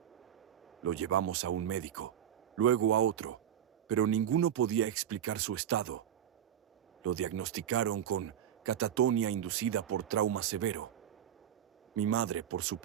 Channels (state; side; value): quieter; left; 10.0 dB